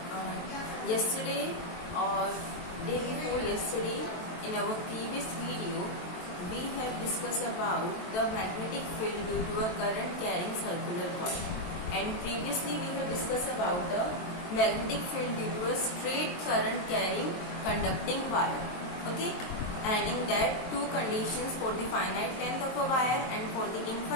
Yesterday or day before yesterday, in our previous video, we have discussed about the magnetic field due to a current carrying circular coil. And previously we have discussed about the magnetic field due to a straight current carrying conducting wire. Okay, and in that two conditions for the finite length of a wire and for the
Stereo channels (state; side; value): late; right; 23 ms